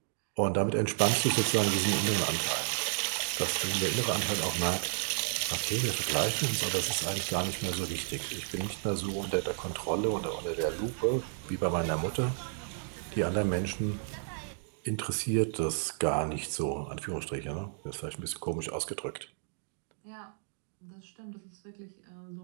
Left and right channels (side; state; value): left; silent; digital silence